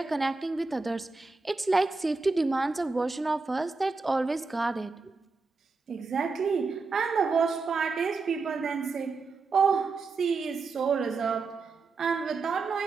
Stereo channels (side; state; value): left; quieter; 4.2 dB